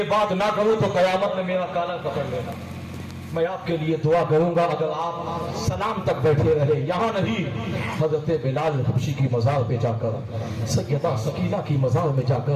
बात ना करूँ तो कयामत में मेरा काला पकड़ लेना। मैं आपके लिए दुआ करूंगा अगर आप सलाम तक बैठे रहे, यहाँ नहीं हजरत बिलाल हबशी की मज़ार पे जाकर, सैयदा सकीना की मज़ार में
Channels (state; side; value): identical; both; correlation 1.00